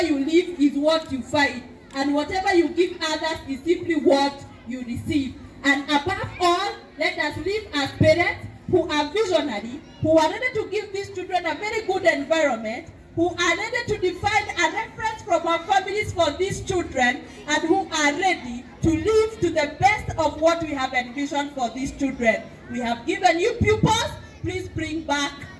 you live is what you fight, and whatever you give others is simply what you receive. And above all, let us live as parents who are visionary, who are ready to give these children a very good environment, who are ready to define a reference from our families for these children, and who are ready to live to the best of what we have envisioned for these children. We have given you pupils, please bring back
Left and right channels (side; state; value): both; identical; correlation 1.00